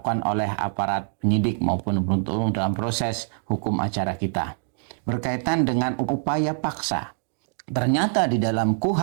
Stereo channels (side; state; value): left; silent; digital silence